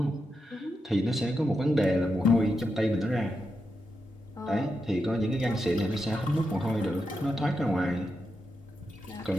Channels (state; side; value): normal; both; correlation 0.86